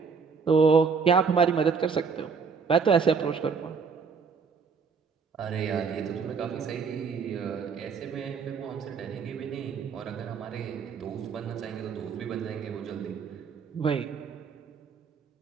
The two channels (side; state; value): left; quieter; 5.6 dB